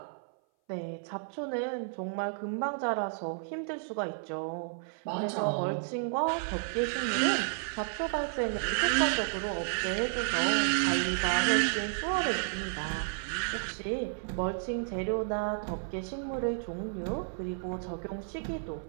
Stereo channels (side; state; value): left; silent; 56 dB below the other